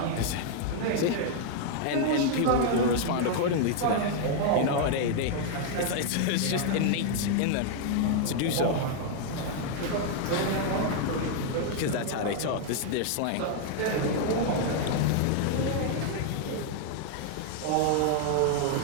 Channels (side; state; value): both; different; correlation 0.00